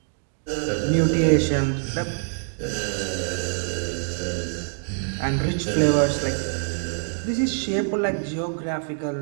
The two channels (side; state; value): left; silent; digital silence